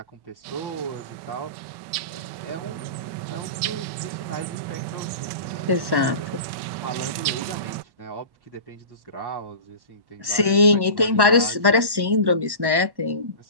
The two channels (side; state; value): left; late; 1.1 ms